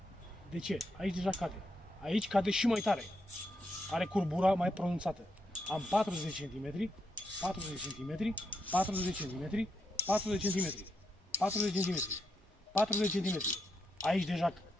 De ce? Aici deja cade. Aici cade și mai tare. Are curbura mai pronunțată. Am 40 cm, 40 cm, 40 cm, 40 cm, 40 cm, 40 de cm. Aici deja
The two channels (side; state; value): both; normal; correlation 0.81